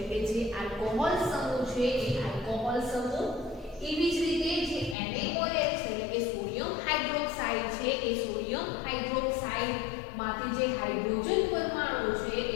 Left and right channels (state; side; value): drops out; right; at 5.0 s